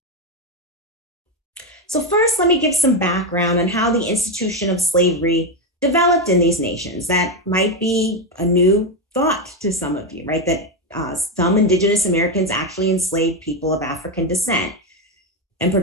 So first, let me give some background on how the institution of slavery developed in these nations. That might be a new thought to some of you, right? That some Indigenous Americans actually enslaved people of African descent and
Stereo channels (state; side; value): normal; both; correlation 0.08